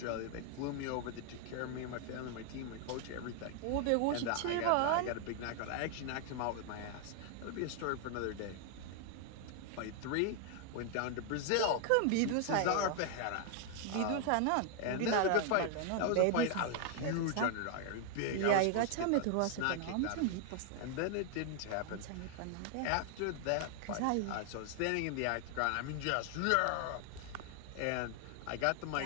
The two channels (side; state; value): both; different; correlation 0.00